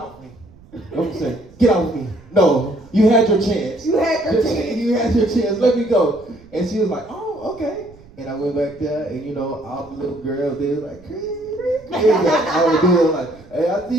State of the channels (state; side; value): noise; right; rumble, 24 dB below the sound